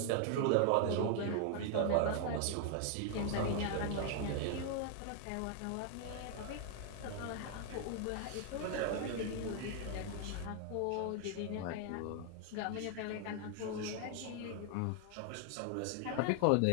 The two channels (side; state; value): both; different; correlation 0.00